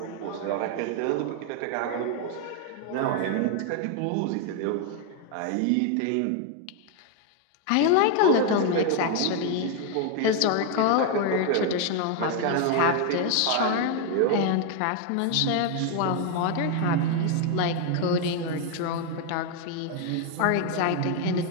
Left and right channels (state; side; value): different; both; correlation 0.01